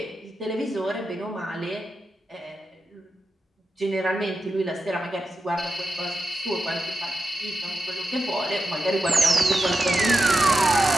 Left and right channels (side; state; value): both; normal; correlation 0.89